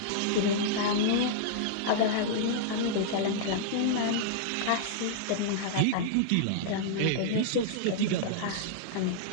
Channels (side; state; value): both; different; correlation -0.02